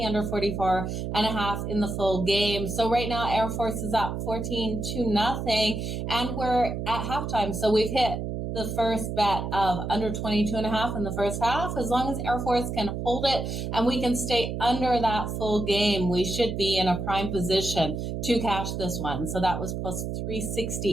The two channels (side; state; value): right; noise; hum, 4 dB below the sound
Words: under 44.5 in the full game. So right now, Air Force is up 14-0, and we're at halftime. So we've hit the first bet of under 22.5 in the first half. As long as Air Force can hold it and we can stay under that full game, we should be in a prime position to cash this one. So that was plus